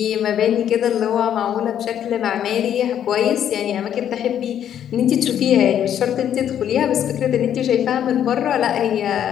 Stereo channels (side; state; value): right; quieter; 9.9 dB